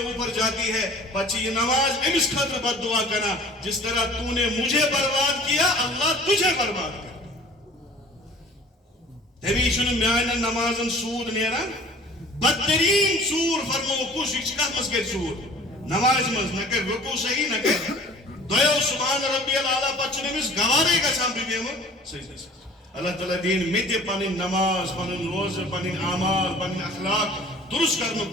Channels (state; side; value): normal; both; correlation 0.47